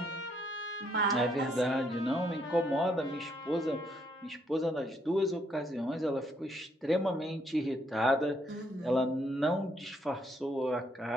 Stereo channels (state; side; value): normal; both; correlation 0.71